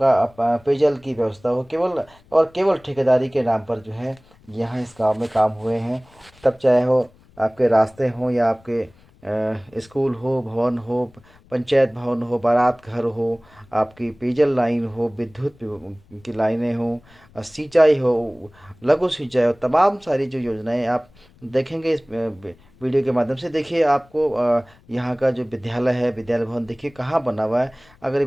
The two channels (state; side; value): noise; left; rumble, 28 dB below the sound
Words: पेयजल की व्यवस्था हो, केवल और केवल ठेकेदारी के नाम पर जो है यहाँ इस गांव में काम हुए हैं। तब चाहे हो आपके रास्ते हों या आपके स्कूल हो, भवन हो, पंचायत भवन हो, बारात घर हो, आपकी पेयजल लाइन हो, विद्युत की लाइनें हो, सिंचाई हो, लघु सिंचाई हो, तमाम सारी जो योजनाएं आप देखेंगे इस वीडियो के माध्यम से। देखिए आपको यहाँ का जो विद्यालय है, विद्यालय भवन देखिए कहाँ बना हुआ है। अगर ये